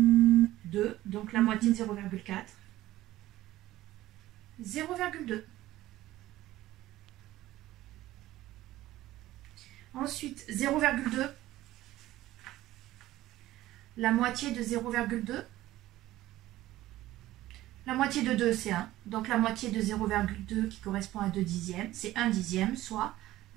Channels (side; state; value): left; quieter; 15.8 dB